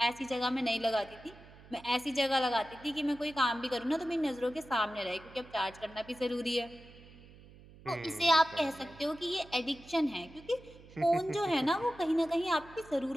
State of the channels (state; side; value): noise; right; hum, 21 dB below the sound